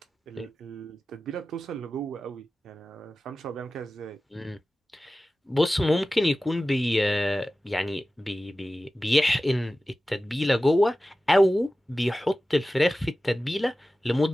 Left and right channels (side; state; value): both; normal; correlation 0.95